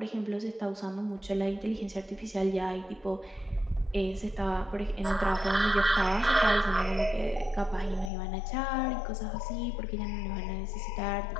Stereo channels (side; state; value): right; drops out; at 8.1 s